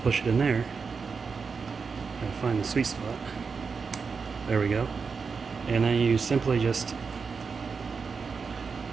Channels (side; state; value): left; quieter; 5.3 dB